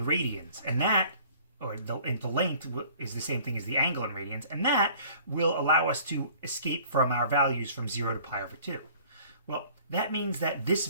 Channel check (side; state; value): both; inverted; correlation -0.51